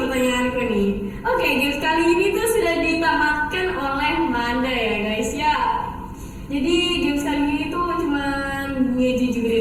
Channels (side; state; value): both; identical; correlation 1.00